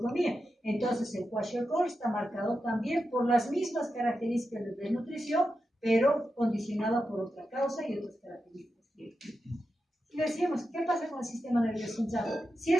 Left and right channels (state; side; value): normal; both; correlation 0.89